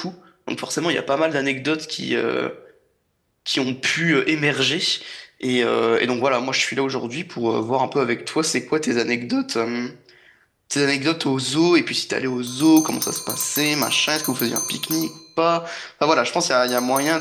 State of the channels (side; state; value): both; identical; correlation 1.00